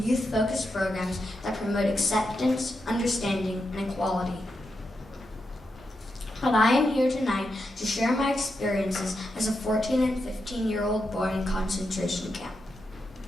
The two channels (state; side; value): normal; both; correlation 0.86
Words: youth-focused programs that promote acceptance, understanding, and equality. But I am here tonight to share my experiences as a 14 and 15-year-old boy in concentration camp.